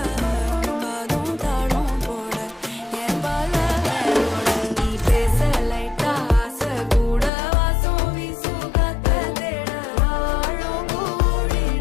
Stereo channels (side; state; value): right; drops out; at 7.3 s